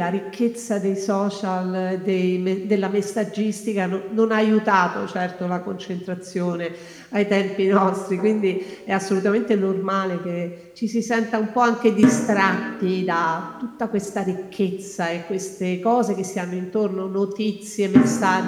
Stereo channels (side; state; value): both; identical; correlation 1.00